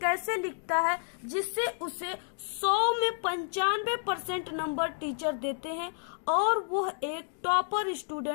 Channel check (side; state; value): right; silent; 57 dB below the other